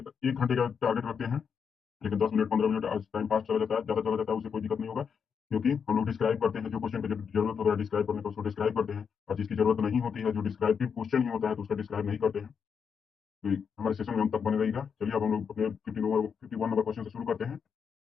घंटे का टारगेट रखते हैं, लेकिन 10 मिनट 15 मिनट टाइम पास चला जाता है, ज्यादा चला जाता है, उससे कोई दिक्कत नहीं होगा। क्योंकि हम लोग डिस्क्राइब करते हैं, जो क्वेश्चन की जरूरत होता है डिस्क्राइब करने का उसको डिस्क्राइब करते हैं, और जिसकी जरूरत नहीं होती है, जो डिस्क्राइबिव क्वेश्चन ही होता है, तो उसका डिस्क्राइब नहीं करते हैं। तो हमारे सेशन में हम तक बने रहिएगा। चलिए अब हम लोग अपने 51 नंबर क्वेश्चन से शुरू करते हैं।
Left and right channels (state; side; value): quieter; right; 6.7 dB